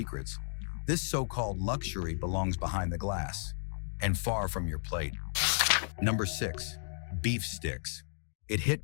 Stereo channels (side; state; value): right; silent; digital silence